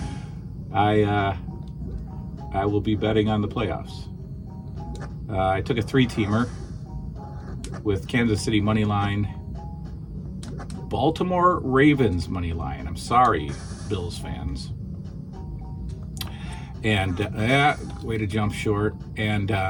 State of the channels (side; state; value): both; identical; correlation 1.00